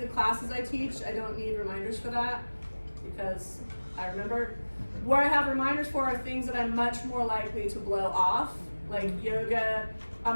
the classes I teach. I don't need reminders for that because I remember. Where I have reminders for are things that I'm much more likely to blow off, like yoga.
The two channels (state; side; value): inverted; both; correlation -1.00